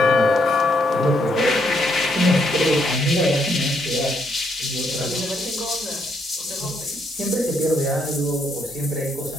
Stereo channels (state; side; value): normal; both; correlation 0.74